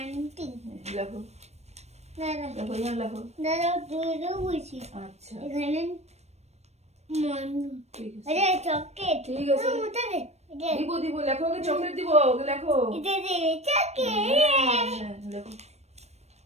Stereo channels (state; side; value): late; left; 0.31 ms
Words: লেখো দাদা লেখো এখানে লেখো। দাদা দুটো বলছি আচ্ছা এখানে মন ঠিক আছে আরে চকলেট ঠিক আছে। ওটা দে এটা দিব দিব লেখো, ওকে চকলেট দিব, ওকে লেখো। এটা দে চকলেট হ্যাঁ, লেখো